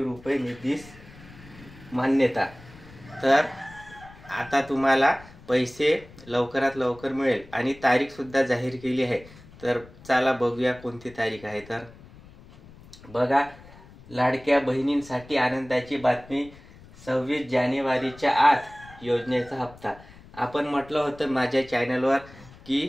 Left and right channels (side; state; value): left; noise; rumble, 21 dB below the sound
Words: रुपये निधीस मान्यता। तर आता तुम्हाला पैसे लवकरात लवकर मिळेल आणि तारीख सुद्धा जाहीर केली आहे। तर चला बघूया कोणती तारीख आहे। तर बघा, लाडक्या बहिणींसाठी आनंदाची बातमी, 26 जानेवारीच्या आत योजनेचा हप्ता। आपण म्हटलं होतं माझ्या चॅनलवर